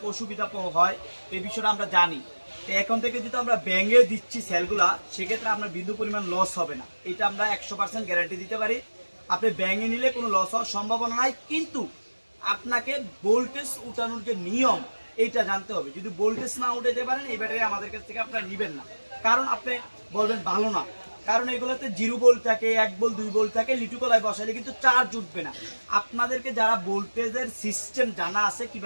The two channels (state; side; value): inverted; both; correlation -1.00